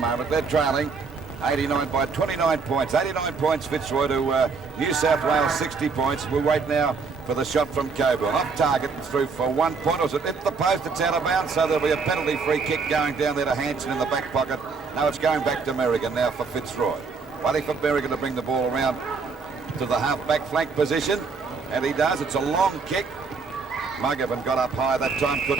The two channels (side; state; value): left; quieter; 4.8 dB